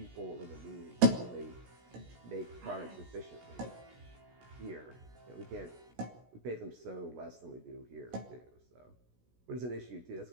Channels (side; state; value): left; late; 16 ms